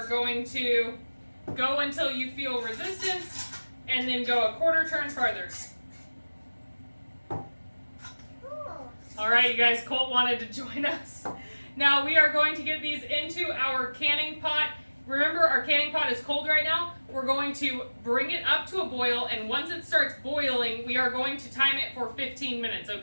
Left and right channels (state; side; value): inverted; both; correlation -1.00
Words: going to go until you feel resistance and then go a 1/4 turn farther. All right, you guys, Colt wanted to join us. Now we are going to get these into our canning pot. Remember, our canning pot is cold right now. We're going to bring it up to a boil, and once it starts boiling, we are going to time it for 15 minutes,